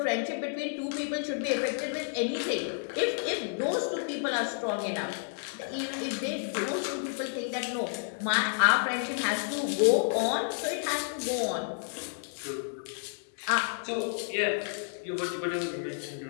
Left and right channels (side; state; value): right; silent; digital silence